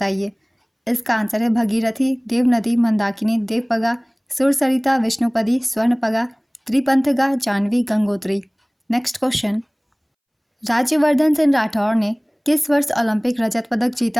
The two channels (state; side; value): identical; both; correlation 1.00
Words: इसका आंसर है भगीरथी, देवनदी, मंदाकिनी, देवपगा, सुरसरिता, विष्णुपदी, स्वर्णपगा, त्रिपंथगा, जाह्नवी, गंगोत्री। नेक्स्ट क्वेश्चन, राज्यवर्धन सिंह राठौर ने किस वर्ष ओलंपिक रजत पदक